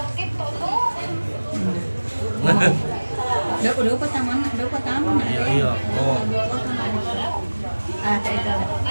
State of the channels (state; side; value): inverted; both; correlation -1.00